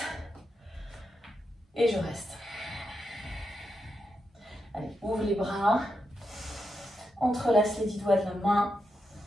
Et je reste. Allez, ouvre les bras. Entrelace les 10 doigts de la main.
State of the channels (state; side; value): normal; both; correlation 0.85